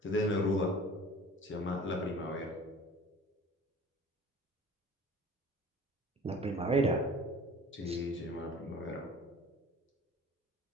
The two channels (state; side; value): normal; both; correlation 0.45